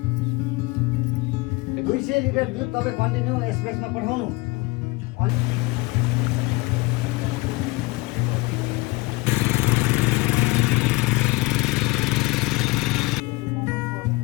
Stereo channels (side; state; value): right; quieter; 23.6 dB